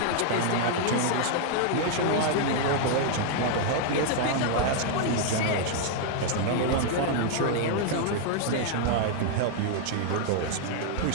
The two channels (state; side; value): different; both; correlation 0.00